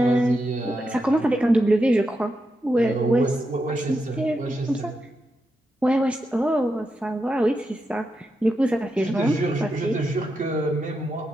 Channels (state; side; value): normal; both; correlation 0.86